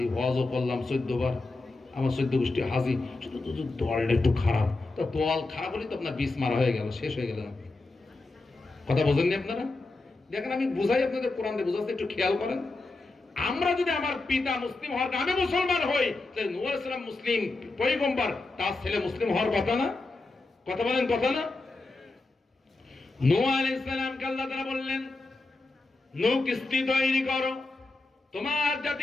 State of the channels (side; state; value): right; quieter; 3.3 dB